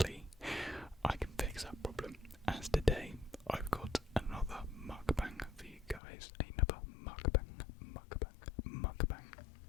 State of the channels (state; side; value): drops out; right; at 6.0 s